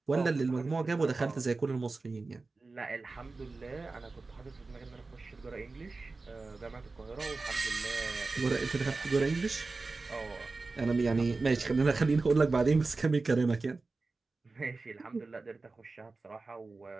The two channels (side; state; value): left; quieter; 3.7 dB